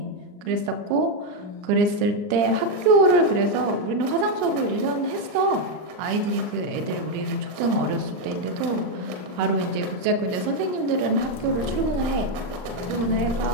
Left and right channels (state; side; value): late; left; 39 ms